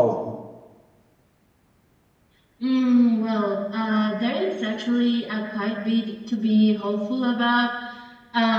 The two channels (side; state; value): both; identical; correlation 1.00